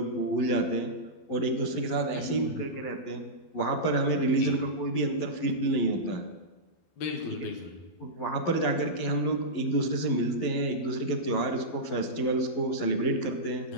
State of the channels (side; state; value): right; late; 12 ms